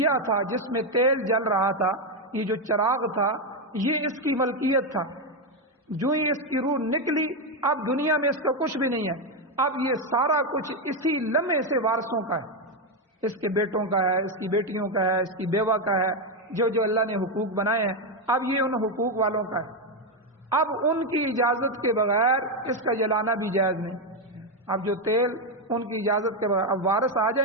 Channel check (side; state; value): both; normal; correlation 0.06